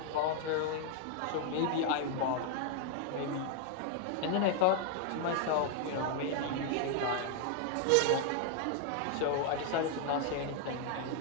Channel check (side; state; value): both; different; correlation 0.00